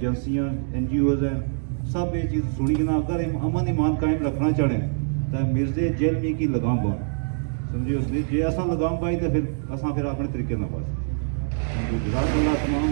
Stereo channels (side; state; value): left; silent; digital silence